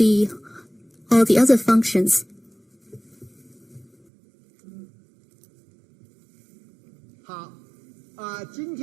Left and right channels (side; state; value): left; drops out; at 3.9 s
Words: all the other functions.